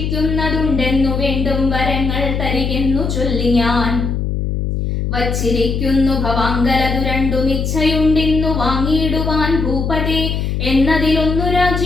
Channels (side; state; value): left; noise; hum, 1 dB below the sound